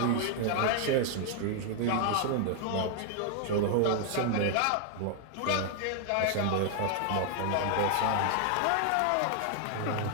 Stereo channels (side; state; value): both; different; correlation 0.00